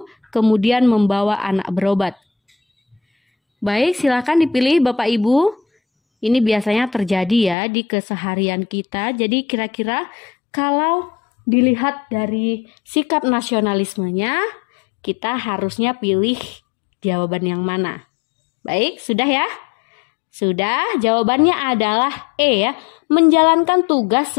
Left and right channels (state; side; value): drops out; right; at 7.6 s